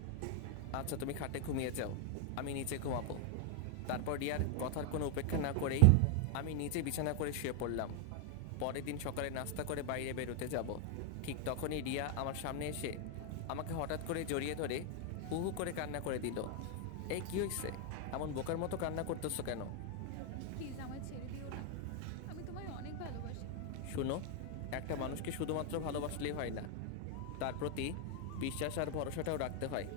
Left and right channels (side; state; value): both; different; correlation 0.01